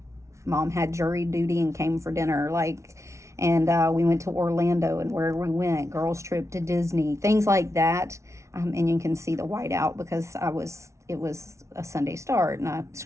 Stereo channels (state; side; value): late; left; 0.14 ms